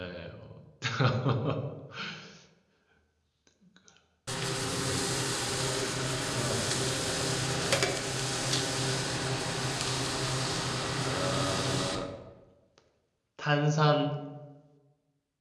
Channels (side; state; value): both; identical; correlation 1.00